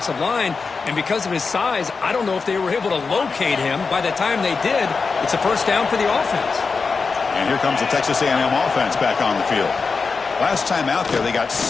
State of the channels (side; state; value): right; quieter; 4.7 dB